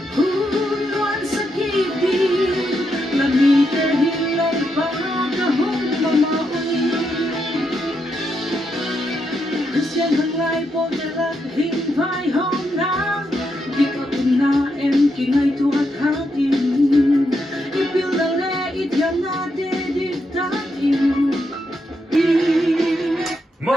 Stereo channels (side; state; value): both; normal; correlation 0.81